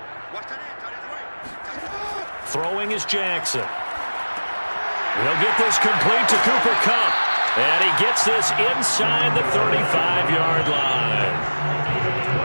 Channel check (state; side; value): inverted; both; correlation -1.00